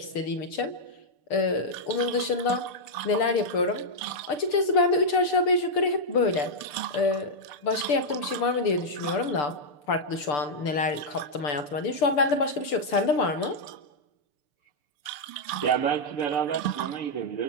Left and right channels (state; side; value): late; right; 6.8 ms